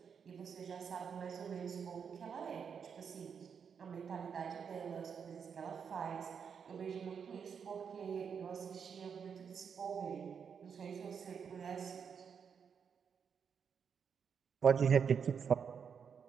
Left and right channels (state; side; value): quieter; left; 6.8 dB